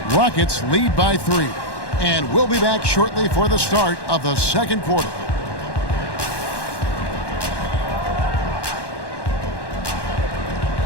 Rockets lead by 3. And we'll be back shortly for the start of the second quarter.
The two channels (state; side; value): late; right; 1.1 ms